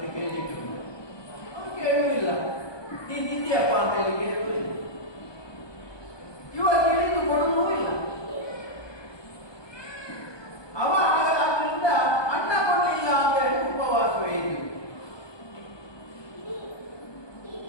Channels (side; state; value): right; late; 1.2 ms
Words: ಕೇಳಲಿಕ್ಕೆ ಅವನು ಕೇಳುವುದಿಲ್ಲ. ನೀನು ತಿಂದಿಯಪ್ಪ ಅಂತ ಹೇಳಿ ಕೇಳುವುದಿಲ್ಲ. ಇವಾಗ ಕೇಳಿದ್ದು ಕೊಡುವುದೂ ಇಲ್ಲ. ಅವ ಅದರಿಂದ ಅನ್ನ